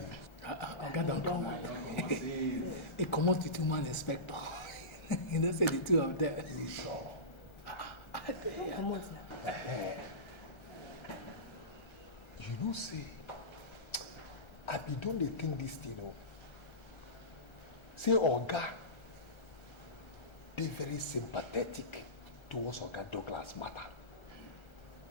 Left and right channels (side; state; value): right; late; 1.3 ms